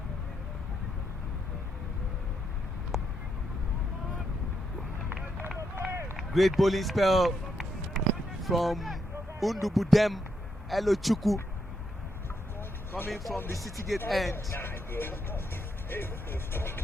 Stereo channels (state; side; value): normal; both; correlation 0.80